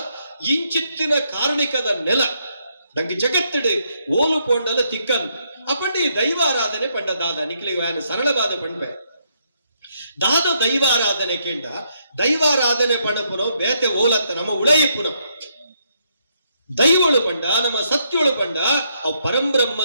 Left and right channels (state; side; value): inverted; both; correlation -0.75